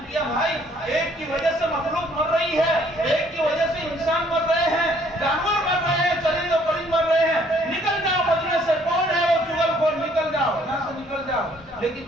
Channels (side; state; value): both; normal; correlation 0.62